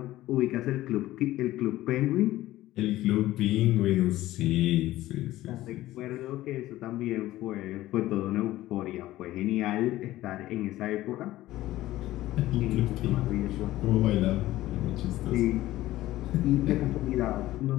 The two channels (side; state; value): right; quieter; 15.8 dB